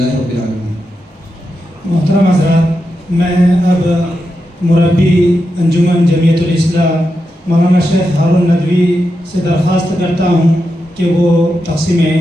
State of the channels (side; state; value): both; normal; correlation 0.87